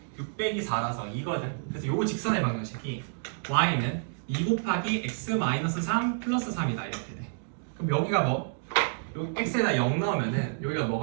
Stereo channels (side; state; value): left; silent; digital silence